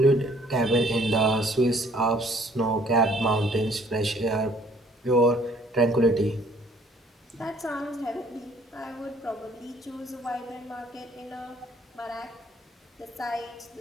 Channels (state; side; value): normal; both; correlation 0.60